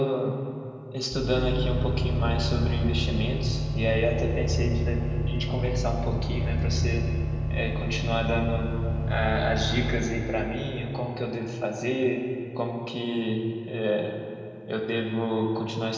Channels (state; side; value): identical; both; correlation 1.00